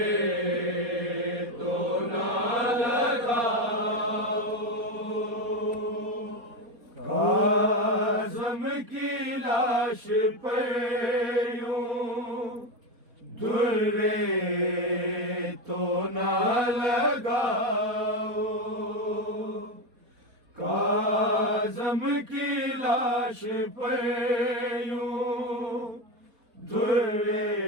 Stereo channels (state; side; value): late; left; 4.3 ms